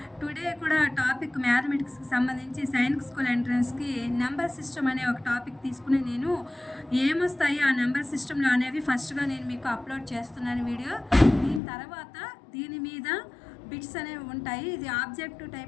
టుడే కూడా టాపిక్ మ్యాథమెటిక్స్కి సంబంధించి సైనిక్ స్కూల్ ఎంట్రన్స్కి నెంబర్ సిస్టమ్ అనే ఒక టాపిక్ తీసుకుని నేను ఏమొస్తాయి ఆ నెంబర్ సిస్టంలో అనేవి ఫస్ట్గా నేను మీకు అప్లోడ్ చేస్తున్నాను వీడియో. దీని తర్వాత దీని మీద బిట్స్ అనేవి ఉంటాయి. ఇది ఆబ్జెక్టివ్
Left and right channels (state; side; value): drops out; right; at 11.6 s